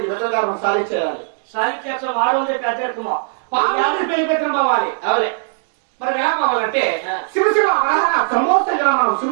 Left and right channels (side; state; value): left; silent; 67 dB below the other